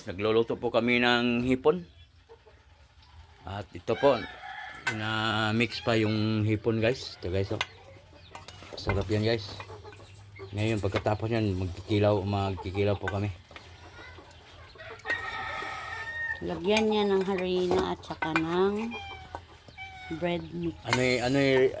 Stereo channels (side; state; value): both; identical; correlation 1.00